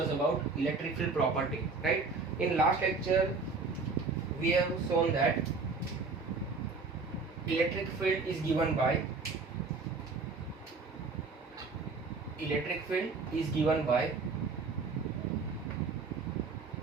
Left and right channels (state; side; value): quieter; left; 4.2 dB